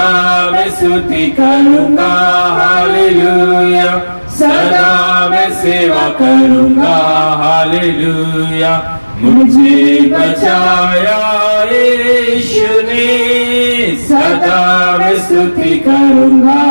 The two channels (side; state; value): both; inverted; correlation -1.00